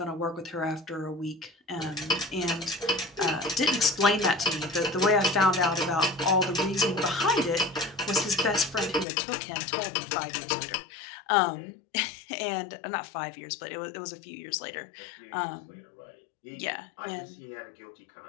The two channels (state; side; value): drops out; right; at 9.1 s